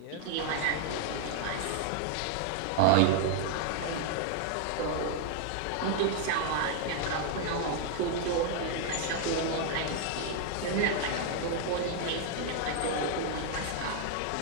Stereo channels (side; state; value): both; different; correlation 0.00